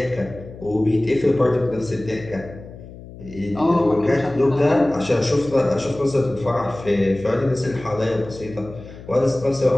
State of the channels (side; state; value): left; noise; hum, 16 dB below the sound